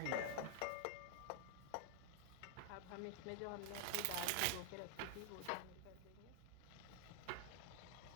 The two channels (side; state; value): both; different; correlation 0.00